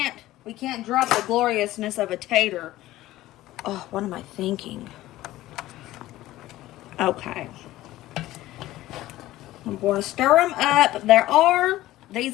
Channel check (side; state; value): right; quieter; 16.0 dB